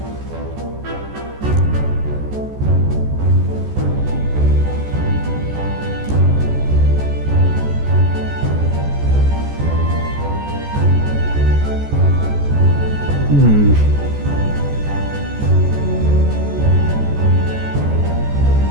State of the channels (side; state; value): left; late; 14 ms